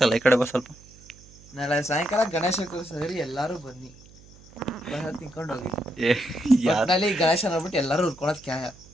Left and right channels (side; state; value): right; noise; hum, 23 dB below the sound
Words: ಈ ಕಡೆ ಬಾ ಸ್ವಲ್ಪ. ನಾಳೆ ಸಾಯಂಕಾಲ ಗಣೇಶ ಕೂರಿಸಿದ್ರಿ, ಎಲ್ಲರೂ ಬನ್ನಿ, ಪ್ರಸಾದ ತಿನ್ಕೊಂಡು ಹೋಗಿ. ಒಟ್ಟಿನಲ್ಲಿ ಗಣೇಶ ನೋಡ್ಬಿಟ್ಟು ಎಲ್ಲರೂ ಉರ್ಕೊಳೋದು ಕ್ಯಾಯ.